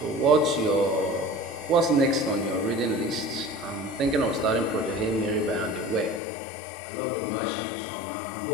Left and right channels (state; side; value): drops out; right; at 6.2 s